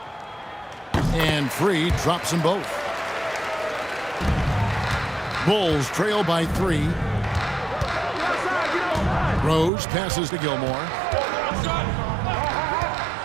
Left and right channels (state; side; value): drops out; left; at 9.7 s